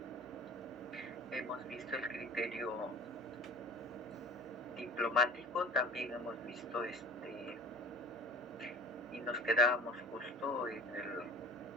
hemos visto el criterio diplomático, también hemos visto y nos quedábamos justo en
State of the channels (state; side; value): normal; both; correlation 0.39